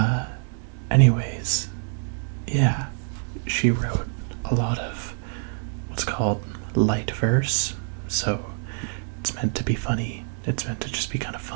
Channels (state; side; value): silent; left; 56 dB below the other